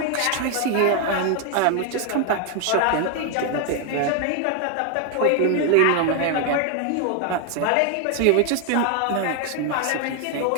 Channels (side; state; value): both; different; correlation 0.01